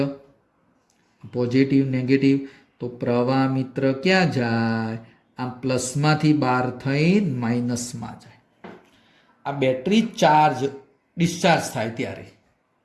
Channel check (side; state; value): both; identical; correlation 1.00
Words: પોઝિટિવ નેગેટિવ, તો પ્રવાહ મિત્ર ક્યાં જાય? આ પ્લસમાંથી બહાર થઈ માઇનસમાં જાય. આ બેટરી ડિસ્ચાર્જ થાય ત્યારે